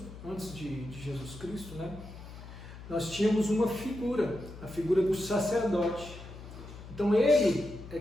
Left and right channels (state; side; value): noise; left; hum, 14 dB below the sound